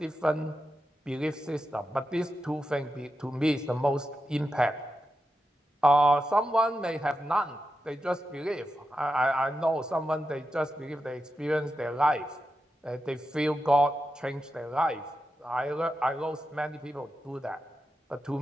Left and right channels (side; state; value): both; normal; correlation 0.89